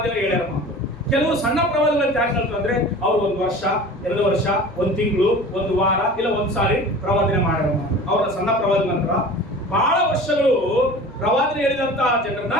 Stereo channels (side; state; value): both; normal; correlation 0.39